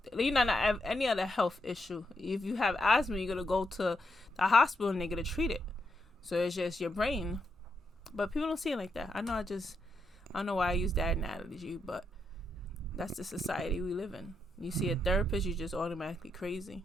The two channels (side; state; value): both; normal; correlation 0.81